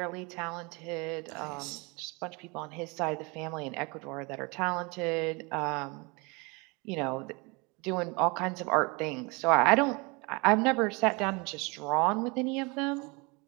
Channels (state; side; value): quieter; left; 28.3 dB